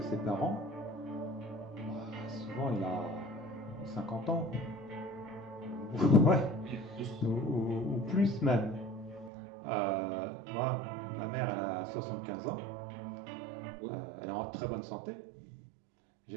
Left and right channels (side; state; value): left; drops out; at 9.3 s